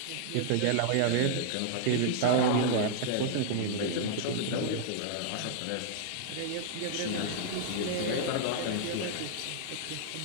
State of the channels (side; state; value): both; different; correlation -0.01